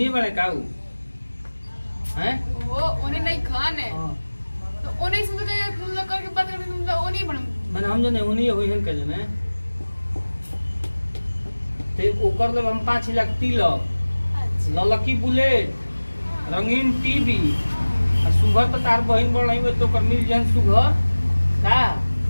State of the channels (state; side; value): inverted; both; correlation -1.00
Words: बड़े काऊ हैं वो उन्हें नहीं खान है तो उन्हें समझ के तुम लोग करके बात करके तुम लोग नहीं बन मैंने हम जने उन्हीं होई हन के जने ते ओकर ले हम 5 लाख तिलक ललकी बुलेट रंगीन टीवी आ सुगर तो तार बहिन बड़ नहीं तो कर मिल जन सुगर का